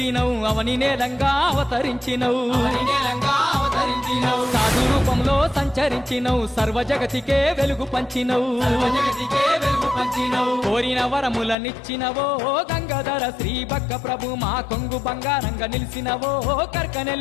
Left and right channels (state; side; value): drops out; right; at 11.6 s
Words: అవని నేలంగా అవతరించినవు సాధు రూపంలో సంచరించినవు సర్వ జగతికే వెలుగు పంచినవు కోరిన వరములనిచ్చినవో గంగాధర శ్రీ బక్క ప్రభు మా కొంగు బంగారంగా నిలిచినవో